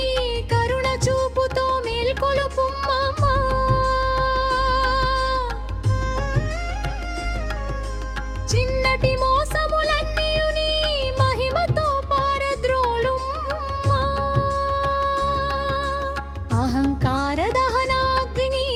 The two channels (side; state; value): both; identical; correlation 1.00